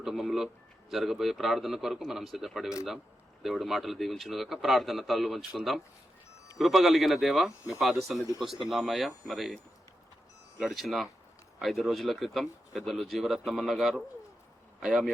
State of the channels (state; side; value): normal; both; correlation 0.88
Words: జరగబోయే ప్రార్థన కొరకు మనం సిద్ధపడి వెళ్దాం. దేవుడి మాటలు దీవించునుగాక. ప్రార్థన తలలు వంచుకుందాం. కృప కలిగిన దేవ, మీ పాద సన్నిధికి వస్తున్నామయ్యా. మరి గడిచిన 5 రోజుల క్రితం పెద్దలు జీవరత్నమన్న గారు అయ్యా మీ